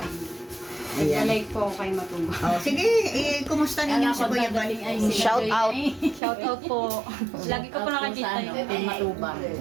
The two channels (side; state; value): left; drops out; at 6.2 s